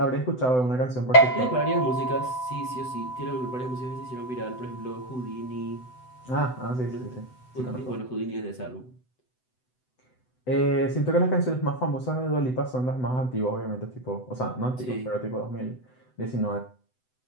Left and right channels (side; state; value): right; late; 7.9 ms